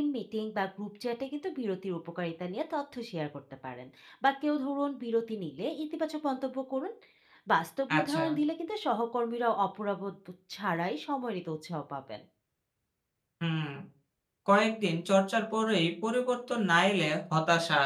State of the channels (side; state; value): both; identical; correlation 1.00